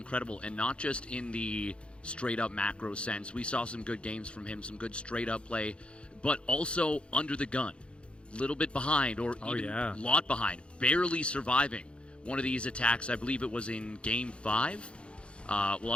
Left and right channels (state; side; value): late; right; 0.058 ms